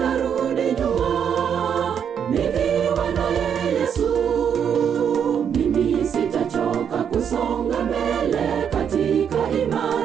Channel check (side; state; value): left; quieter; 8.0 dB